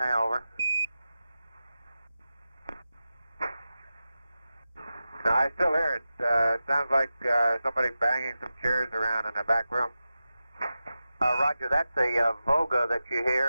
Over. No, I still hear it. Sounds like somebody banging some chairs around in the back room. Roger, that's a Voga that you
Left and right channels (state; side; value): inverted; both; correlation -0.93